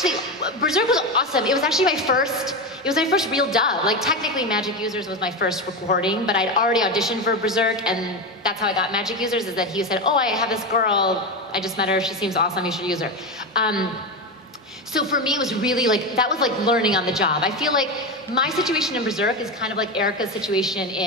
awesome. It was actually my first real dub. Like technically Magic Users was my first recording, but I'd already auditioned for Berserk, and that's how I got Magic Users, is that he said, oh, I have this girl, I just met her, she seems awesome, you should use her. So for me, it was really like, that was like learning on the job. I feel like my situation in Berserk is kind of like Erica's situation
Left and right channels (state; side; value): normal; both; correlation 0.17